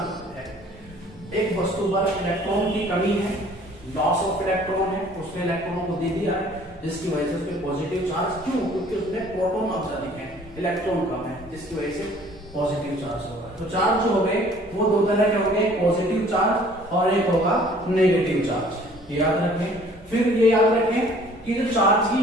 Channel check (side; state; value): both; normal; correlation 0.54